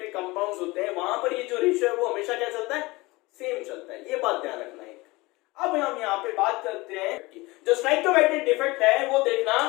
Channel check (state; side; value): quieter; right; 22.3 dB